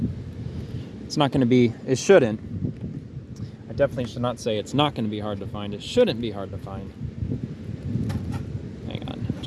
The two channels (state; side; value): identical; both; correlation 1.00